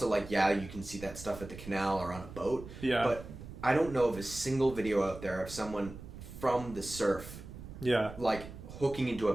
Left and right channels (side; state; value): right; noise; rumble, 13 dB below the sound